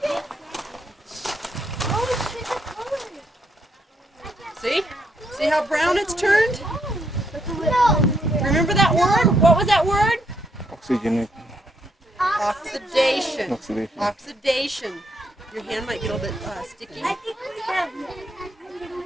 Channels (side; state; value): both; normal; correlation 0.75